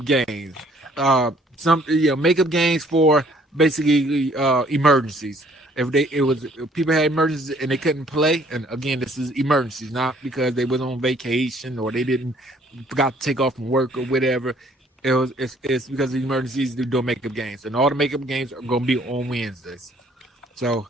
games. Makeup games for basically emergencies. If people had emergencies and they couldn't play, and again, this is emergencies, not because they was on vacation or they forgot to take off from work or whatever. It's because of the emergencies they're doing makeup games, and all the makeup games are gonna be on Wednesdays. So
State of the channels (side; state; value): both; normal; correlation 0.61